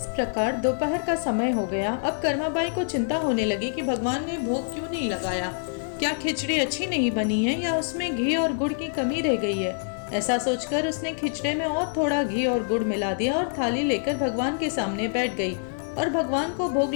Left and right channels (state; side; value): silent; right; digital silence